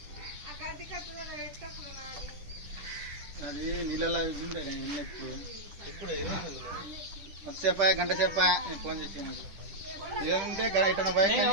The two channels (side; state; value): left; late; 10 ms